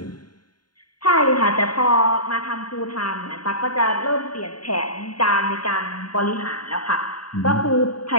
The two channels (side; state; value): right; late; 0.71 ms